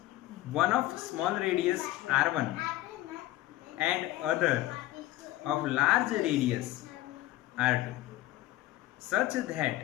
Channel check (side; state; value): right; quieter; 16.0 dB